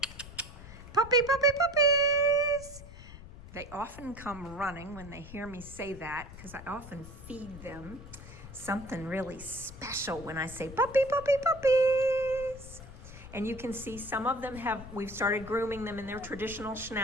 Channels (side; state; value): left; noise; rumble, 15 dB below the sound